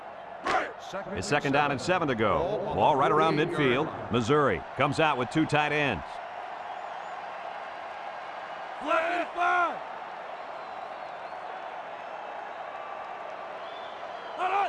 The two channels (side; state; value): both; identical; correlation 1.00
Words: It's 2nd down and 7 to go. Ball right around midfield. Missouri comes out with 2 tight ends.